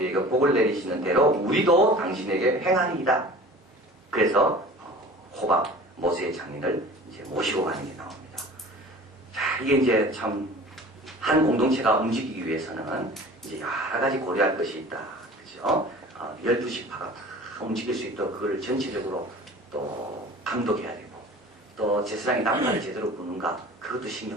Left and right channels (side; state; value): both; normal; correlation 0.42